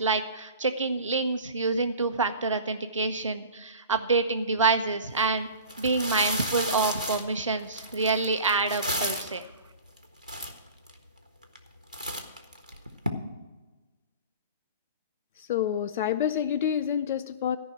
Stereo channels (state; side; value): inverted; both; correlation -0.38